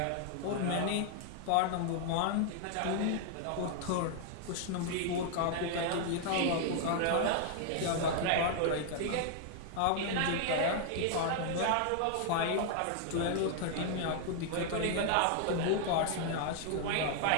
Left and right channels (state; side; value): different; both; correlation 0.00